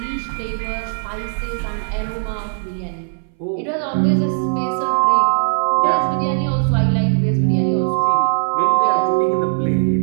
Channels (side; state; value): left; silent; 62 dB below the other